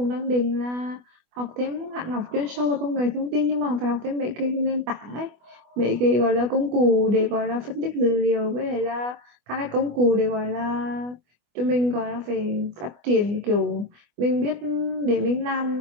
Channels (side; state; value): left; late; 24 ms